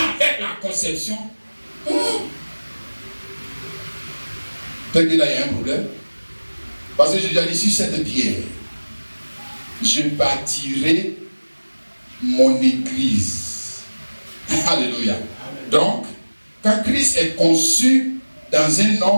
avec la conception. Peut-être que là, il y a un problème. Parce que j'ai déjà dit, sur cette pierre, je bâtirai mon église. Alléluia. Donc, quand Christ est conçu dans un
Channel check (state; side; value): inverted; both; correlation -1.00